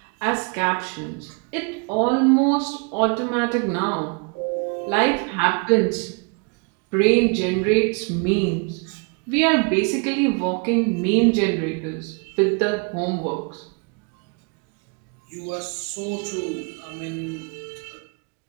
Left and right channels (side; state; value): left; quieter; 35.4 dB